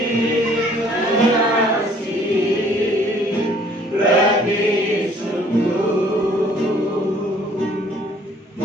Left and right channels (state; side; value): normal; both; correlation 0.58